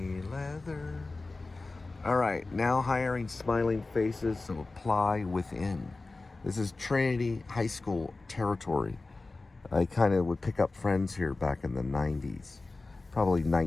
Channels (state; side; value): quieter; right; 3.4 dB